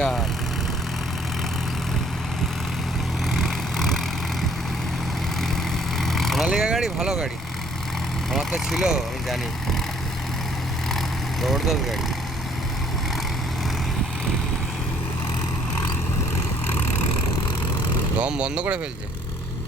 সোনালিকা গাড়ি ভালো গাড়ি, আমার তো ছিল, আমি জানি, জবরদস্ত গাড়ি। দম বন্ধ করে ফেলছে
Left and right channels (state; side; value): normal; both; correlation 0.61